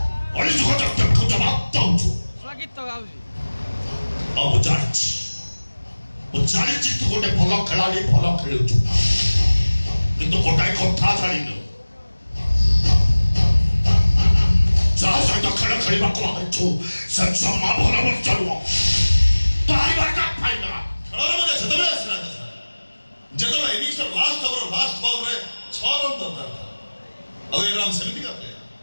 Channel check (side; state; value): both; inverted; correlation -1.00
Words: ଅଳିଯୁଗ ଜଗତକୁ ଜବାବ ଦଉଛୁ। ଆଉ ମୁଁ ଜାଣିଛି ତୁ ଗୋଟେ ଭଲ ଖେଳାଳି, ଭଲ ଖେଳୁଛୁ, କିନ୍ତୁ ଗୋଟାଏ କଥା ଜାଣିନୁ, ଯାହା ସହିତ ଖେଳ ଖେଳିବାକୁ ଆଇଛୁ ସେ ଜମା ଭଲ ମଣିଷ ନୁହଁ। ଖେଳର ମଜା ସେତେବେଳେ ଆସିଲା ଯେତେବେଳେ ଇନିଂସର ଲାଷ୍ଟ ଓଭର ଲାଷ୍ଟ ବଲରେ 6 ରନ୍ ଦରକାର ଥିଲା। ଆଉ ଏ ରାମ ସେମିତିକା ପ୍ଲେୟାର